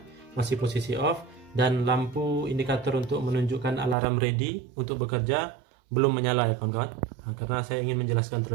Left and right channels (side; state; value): left; drops out; at 4.0 s